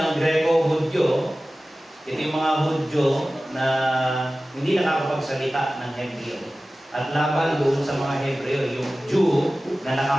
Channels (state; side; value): normal; both; correlation 0.96